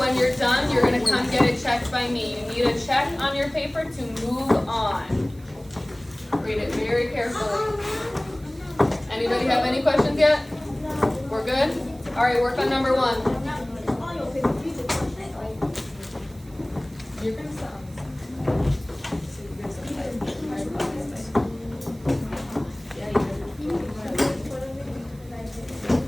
you're done, you're going to come get it checked by me. You need a check on your paper to move on. Read it very carefully. Anybody have any questions yet? We're good? All right, work on number one.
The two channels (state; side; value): noise; right; hiss, 26 dB below the sound